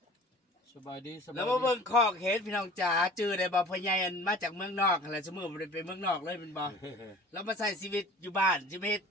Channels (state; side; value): normal; both; correlation 0.45